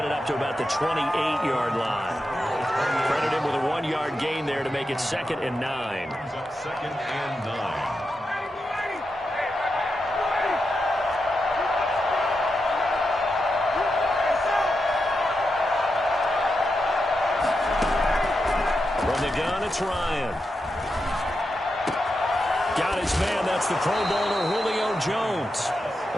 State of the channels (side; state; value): both; normal; correlation 0.87